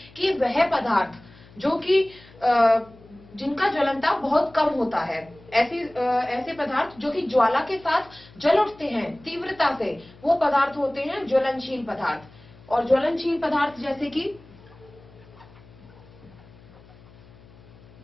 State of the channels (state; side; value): noise; left; hum, 24 dB below the sound